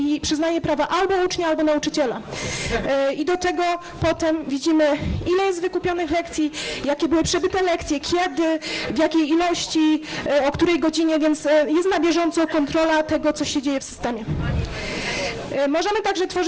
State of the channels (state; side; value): identical; both; correlation 1.00